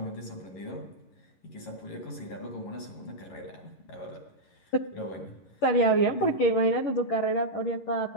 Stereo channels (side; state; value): right; late; 11 ms